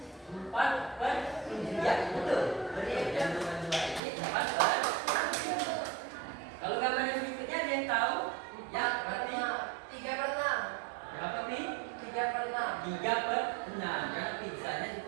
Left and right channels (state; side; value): drops out; left; at 4.0 s